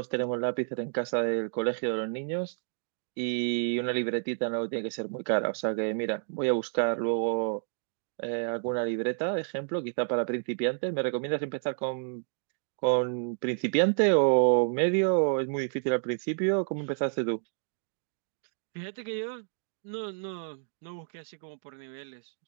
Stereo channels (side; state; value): left; silent; digital silence